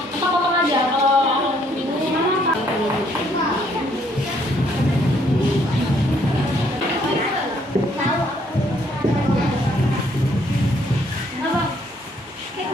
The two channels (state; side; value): normal; both; correlation 0.67